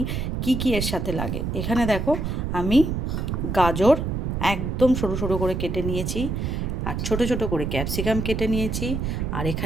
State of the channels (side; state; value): right; noise; rumble, 2 dB below the sound